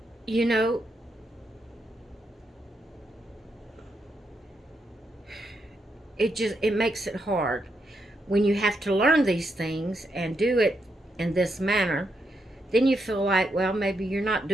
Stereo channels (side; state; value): both; normal; correlation 0.81